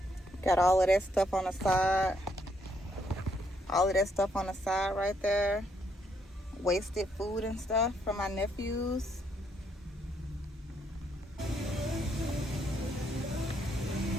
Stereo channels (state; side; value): normal; both; correlation 0.73